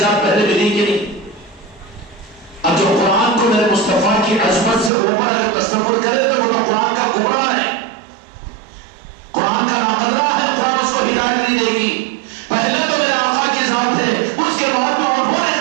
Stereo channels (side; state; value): left; drops out; at 4.9 s